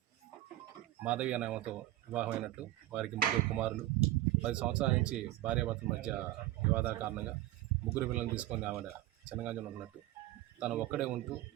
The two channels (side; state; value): left; quieter; 15.6 dB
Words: మాధవి అనే ఆమెతో వివాహమైనట్టు, వారికి 3 కుమారులు. 10 సంవత్సరాల నుంచి భార్యాభర్తల మధ్య వివాదాల కారణంగా 3 పిల్లలను తీసుకొని ఆవిడ చెనగంజంలో ఉన్నట్టు, తను ఒక్కడే ఉంటూ